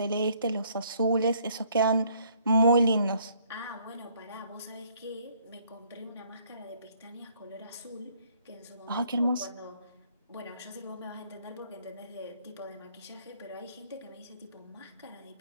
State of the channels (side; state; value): both; inverted; correlation -0.64